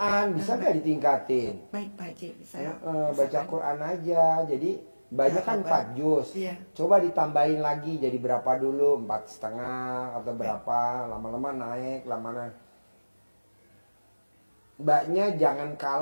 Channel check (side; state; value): both; inverted; correlation -1.00